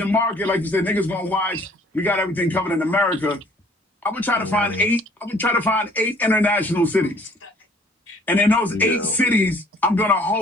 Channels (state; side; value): normal; both; correlation 0.57